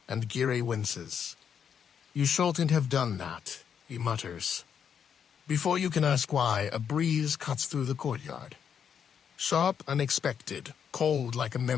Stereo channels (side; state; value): right; quieter; 7.8 dB